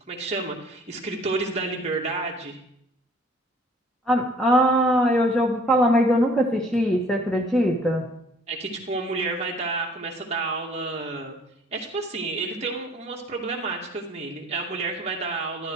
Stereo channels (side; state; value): both; normal; correlation 0.55